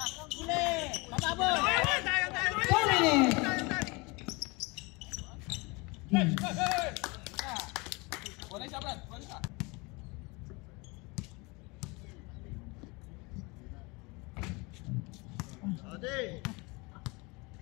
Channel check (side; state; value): right; quieter; 26.7 dB